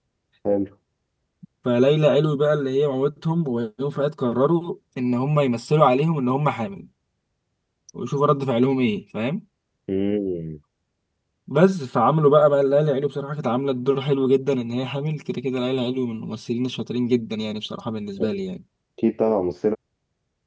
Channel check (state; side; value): identical; both; correlation 1.00